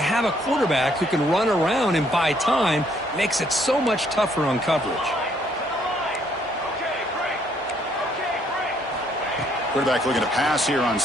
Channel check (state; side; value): normal; both; correlation 0.67